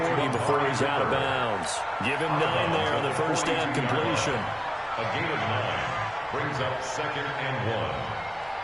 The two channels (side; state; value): both; identical; correlation 1.00